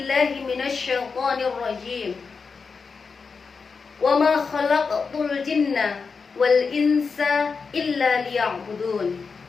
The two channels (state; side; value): quieter; right; 5.1 dB